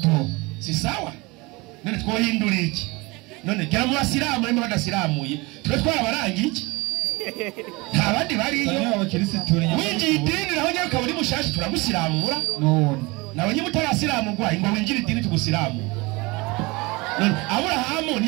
si sawa none twohindura iki none gera mu basiramu n'imo badasiramuye twe twarabarangi iki nta bandi bariyo winjiye idini naho nyine ukaba uri mushashi turagusiramura none nawe nyine utarasiramurwa ngo winjire idini tugusiramura none Aburahamu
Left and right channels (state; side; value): quieter; left; 24.6 dB